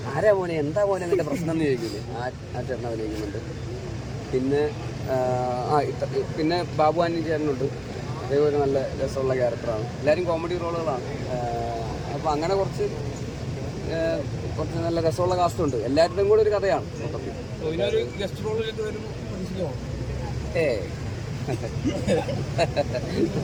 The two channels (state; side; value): identical; both; correlation 1.00